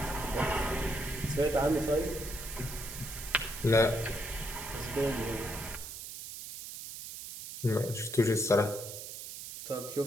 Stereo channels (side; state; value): right; noise; hiss, 10 dB below the sound